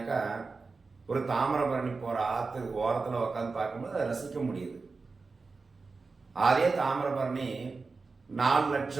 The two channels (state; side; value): quieter; left; 4.2 dB